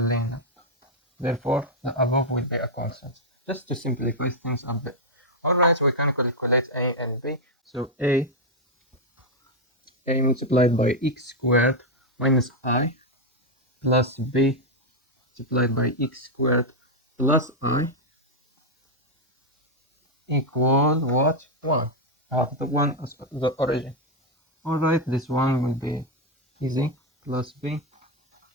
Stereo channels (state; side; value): normal; both; correlation 0.01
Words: Therefore, the above will be a constant. Just to simplify things a bit. Alright, we can calculate a and b. So a multiplied by x squared minus I plus b multiplied by x squared plus I equal what? 1. I have the 1 as the origin. Alright, this one will be easy. Plus b